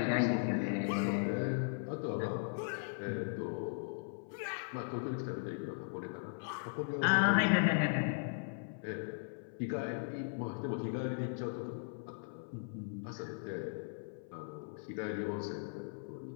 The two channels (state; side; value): silent; right; 52 dB below the other